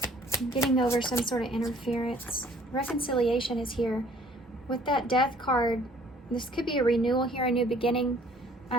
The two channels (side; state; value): both; normal; correlation 0.57